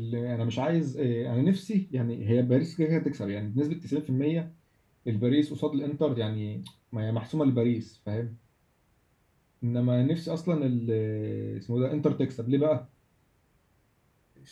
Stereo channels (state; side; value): identical; both; correlation 1.00